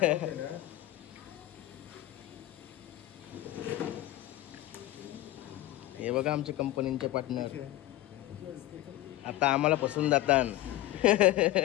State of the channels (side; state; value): right; quieter; 15.9 dB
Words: हे बघा आमच्या कंपनीचे पार्टनर. आता आम्हाला फसून जातात.